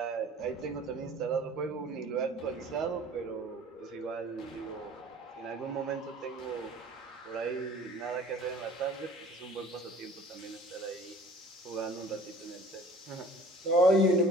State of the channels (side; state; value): both; normal; correlation 0.48